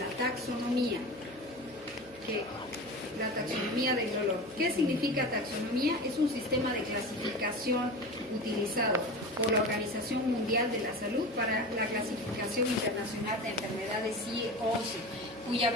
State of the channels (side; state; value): right; noise; hum, 24 dB below the sound